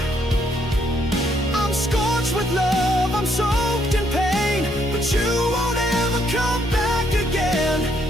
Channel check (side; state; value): both; normal; correlation 0.72